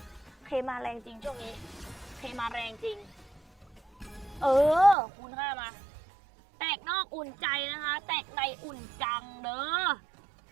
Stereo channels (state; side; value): drops out; left; at 5.0 s